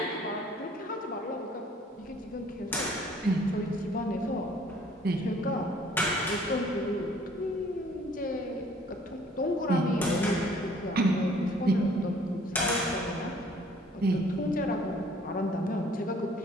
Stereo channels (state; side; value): normal; both; correlation 0.57